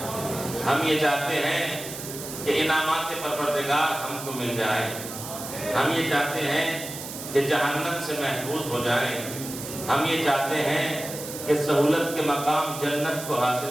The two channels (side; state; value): right; noise; hiss, 10 dB below the sound